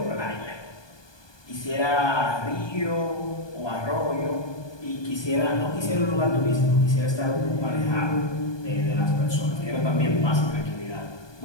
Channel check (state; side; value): late; right; 1.2 ms